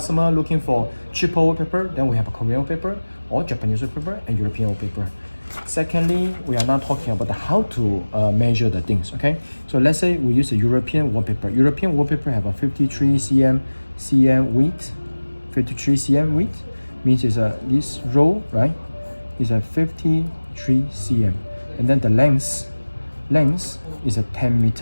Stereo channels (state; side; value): inverted; both; correlation -1.00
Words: looking for cheaper wallpaper, then we have a Korean wallpaper or Japanese wallpaper and European wallpaper. Secondly, we are now talking about how to measure the things. Okay, so let's say we use a European wallpaper. European wallpaper have a 53 cm width. 53 cm width means is this row, right, is a 53 cm, and then the length is a 10